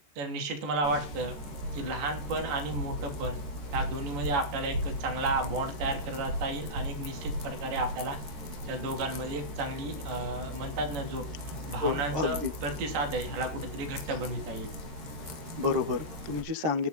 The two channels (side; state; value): left; late; 13 ms